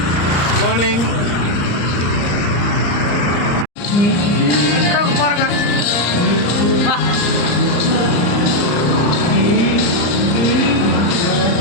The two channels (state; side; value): late; right; 34 ms